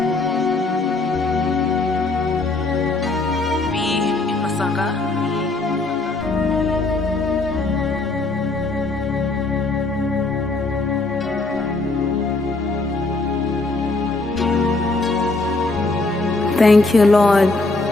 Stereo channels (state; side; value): quieter; right; 3.3 dB